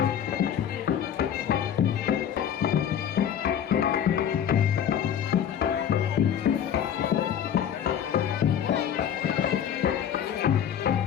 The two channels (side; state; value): right; quieter; 9.1 dB